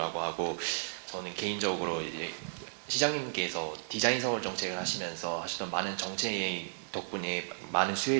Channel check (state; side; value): silent; left; digital silence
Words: 하고, 저는 개인적으로 이제 시장님께서 디자인 서울 정책을 하시면서 하셨던 많은 정책 덕분에 많은